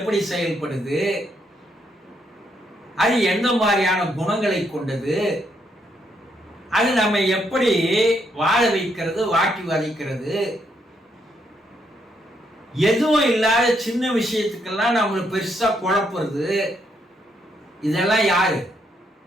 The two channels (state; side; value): normal; both; correlation 0.75